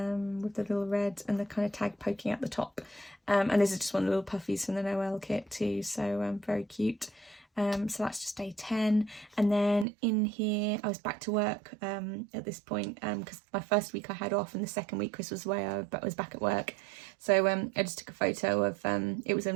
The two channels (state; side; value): drops out; left; at 9.9 s